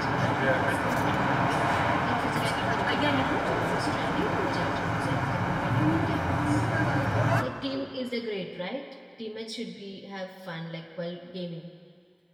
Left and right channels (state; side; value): identical; both; correlation 1.00